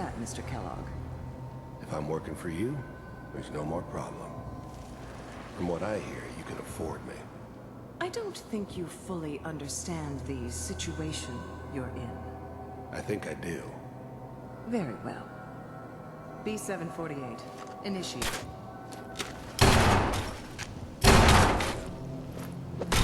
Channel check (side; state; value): both; identical; correlation 1.00